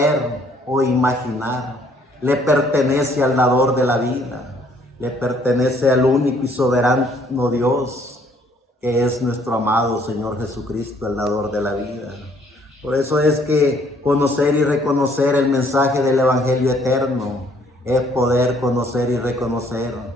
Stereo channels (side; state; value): both; normal; correlation 0.63